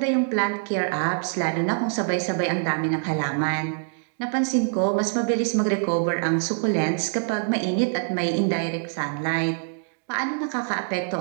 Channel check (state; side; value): silent; left; digital silence